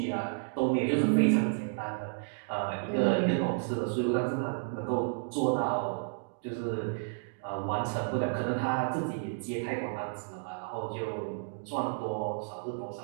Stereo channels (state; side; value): silent; left; digital silence